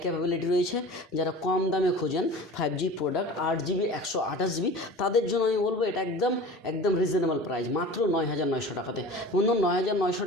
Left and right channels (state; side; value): normal; both; correlation 0.38